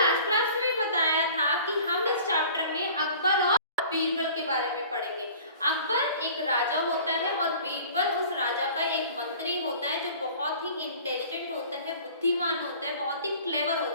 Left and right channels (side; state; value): both; inverted; correlation -0.46